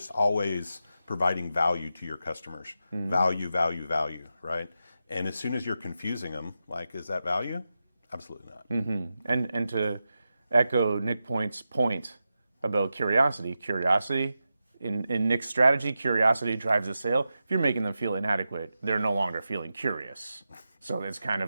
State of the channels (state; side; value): inverted; both; correlation -0.90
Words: always providing value to your customers. Value, value, value, right? And as soon as you're confusing them, like, is that value? Absolutely not. And to echo Nick Point's point about curiosity, in Nick's strategy, curiosity drives the sale. If you're making them feel inadequate, they're no longer feeling curious. So it's kind